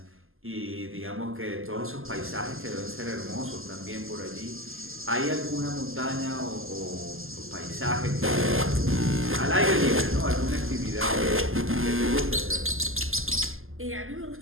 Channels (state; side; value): late; left; 0.60 ms